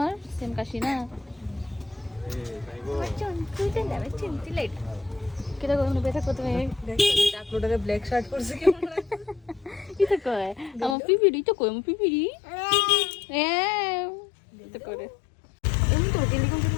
সেম কাশি না बच्चों तू तो ना बच्चों तू लाइट কেটা কোন বেটা কত মে আপলোডে ব্ল্যাক শার্ট পরছে কেমন ইতা কয় আমার পিপিডি তো কই আমার পিপিডি ইতা করে এমন তো গেলি কোন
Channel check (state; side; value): drops out; right; at 11.0 s